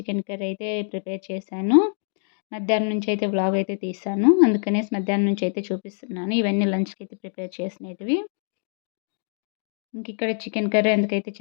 curry అయితే ప్రిపేర్ చేశాను. మధ్యాహ్నం నుంచి అయితే వ్లాగ్ అయితే తీశాను. అందుకనేసి మధ్యాహ్నం నుంచి అయితే చూపిస్తున్నాను. ఇవన్నీ లంచ్కి అయితే ప్రిపేర్ చేసినవి. ఇక్కడ చికెన్ కర్రీ ఎందుకైతే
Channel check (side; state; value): right; silent; 57 dB below the other